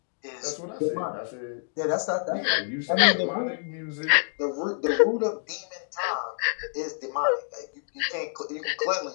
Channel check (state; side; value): silent; right; digital silence